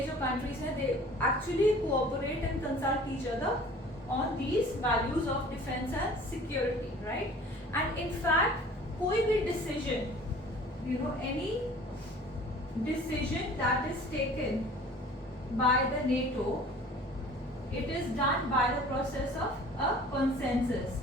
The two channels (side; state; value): both; normal; correlation 0.47